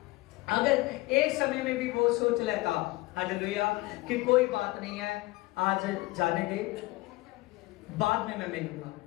अगर एक समय में भी वो सोच लेता, हालेलुया, कि कोई बात नहीं है, आज जाने दे, बाद में मैं मिलूंगा,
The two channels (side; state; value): right; quieter; 21.0 dB